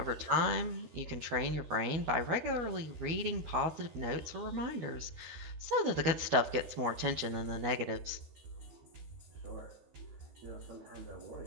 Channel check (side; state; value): left; late; 12 ms